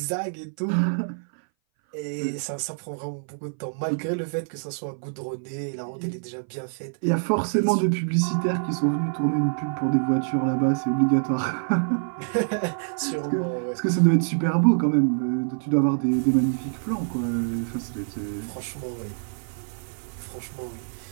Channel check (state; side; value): silent; left; 59 dB below the other